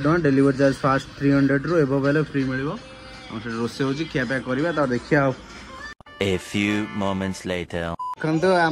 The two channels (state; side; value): identical; both; correlation 1.00